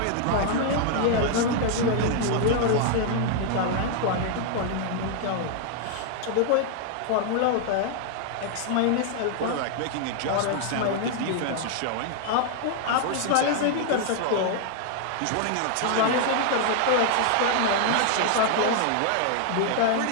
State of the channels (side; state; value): both; different; correlation 0.00